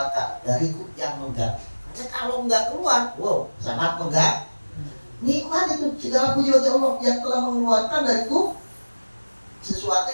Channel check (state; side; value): inverted; both; correlation -1.00